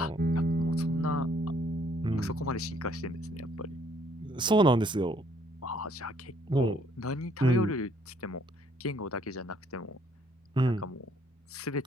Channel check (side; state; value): both; normal; correlation 0.64